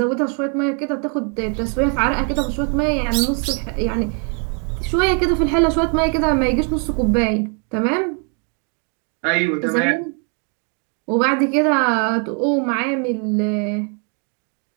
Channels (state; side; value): quieter; left; 39.8 dB